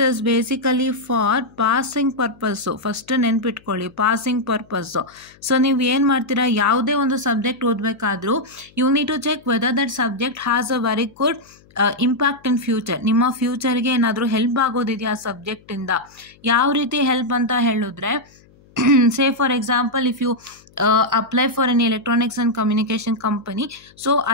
is basically for passing purpose. First ನೆನ್ಪಿಟ್ಕೊಳ್ಳಿ, passing purpose. So ನೀವು ಏನು ಮಾಡ್ತೀರಾ, ಯಾವುದೇ ಒಂದು ಸಬ್ಜೆಕ್ಟ್ ಓದಬೇಕಾದ್ರೂ you need to check whether that subject has a very good impact in future. ನಿಮ್ಮ ಫ್ಯೂಚರ್ಗೆ ಏನಾದರೂ ಹೆಲ್ಪ್ ಆಗೋದಿದೆಯಾ ಆ ಸಬ್ಜೆಕ್ಟಿಂದ? ಯಾವ ರೀತಿ ಹೆಲ್ಪ್ ಅಂತ ಹೇಳಿದ್ರೆ, say for example if you apply for an electronics and communication company, so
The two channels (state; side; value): noise; left; hum, 29 dB below the sound